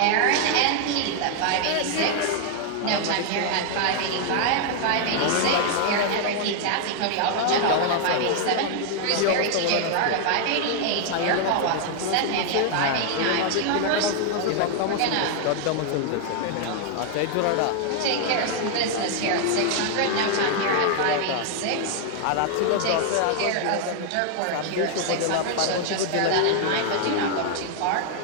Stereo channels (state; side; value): different; both; correlation 0.00